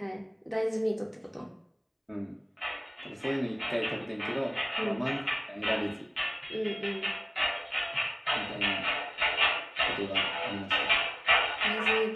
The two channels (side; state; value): both; identical; correlation 1.00